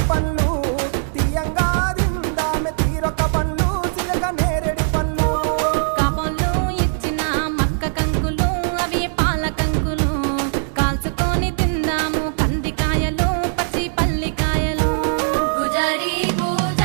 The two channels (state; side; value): silent; left; digital silence